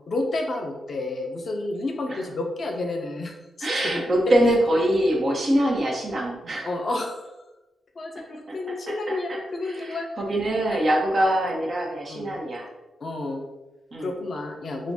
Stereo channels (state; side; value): normal; both; correlation 0.86